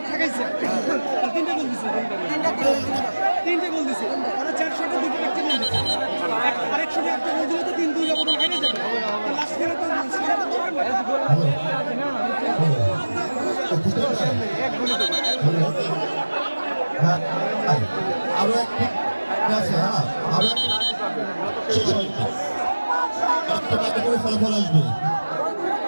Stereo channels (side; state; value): both; inverted; correlation -1.00